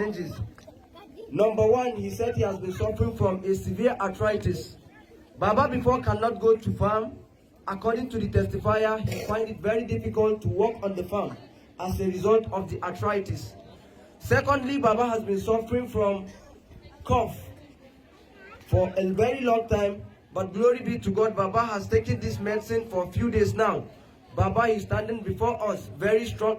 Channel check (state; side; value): identical; both; correlation 1.00